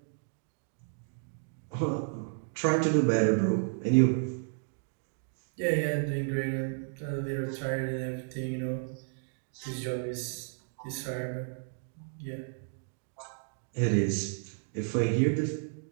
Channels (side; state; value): left; silent; digital silence